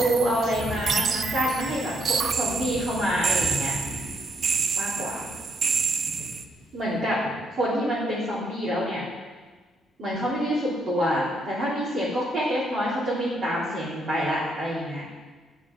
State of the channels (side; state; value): both; normal; correlation 0.74